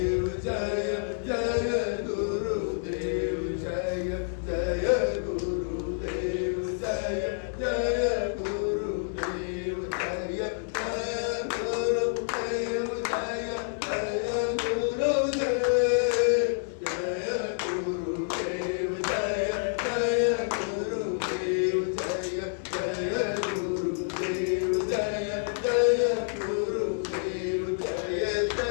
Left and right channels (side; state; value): right; silent; 59 dB below the other